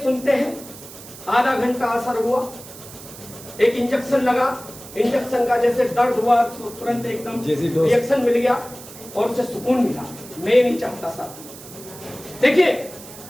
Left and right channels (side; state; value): right; noise; hiss, 16 dB below the sound